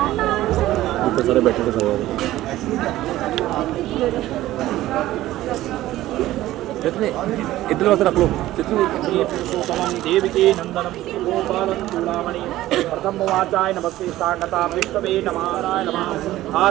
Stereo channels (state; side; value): quieter; left; 15.3 dB